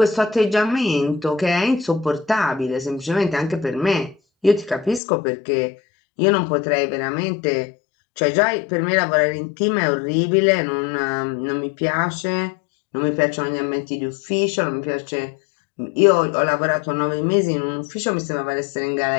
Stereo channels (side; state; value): right; drops out; at 5.0 s